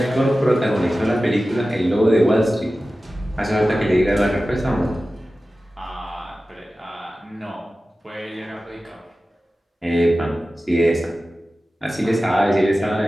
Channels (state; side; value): normal; both; correlation 0.95